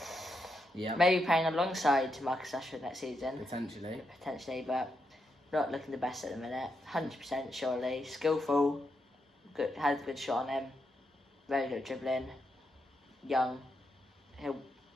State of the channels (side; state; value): both; normal; correlation 0.82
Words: Yeah. Maybe playing alongside Marcus Rashford next season. Potentially, but not looking the best at the minute. 100% surely. Skillful. Good, has a good shot on him. Very good dribbling. Young. He'll